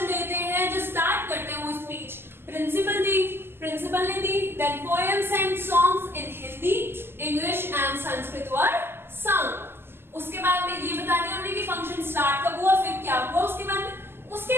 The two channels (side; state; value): left; late; 0.11 ms